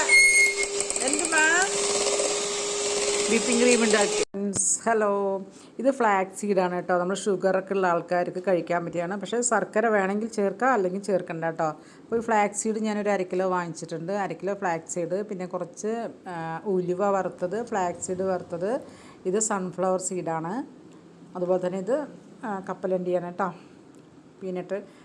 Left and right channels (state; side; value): identical; both; correlation 1.00